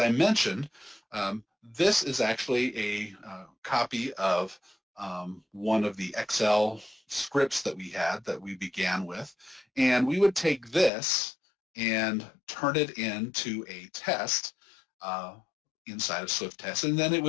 mentioned, this is actually a copy of one of the Excel scripts that we had that we began with, and we would take this and turn it into a test inside of Swift Test, and then it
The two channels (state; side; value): drops out; right; at 10.9 s